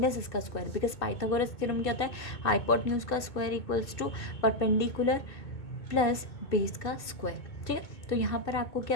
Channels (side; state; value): right; late; 2.6 ms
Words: इसका स्क्वायर, बिकॉज पाइथागोरस थ्योरम क्या होता है, हाइपोटेन्यूज का square equals to perpendicular plus base का स्क्वायर। ठीक है। तो यहाँ पर आपको